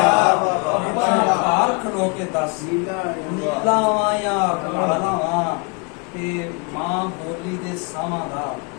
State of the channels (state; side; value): quieter; right; 32.4 dB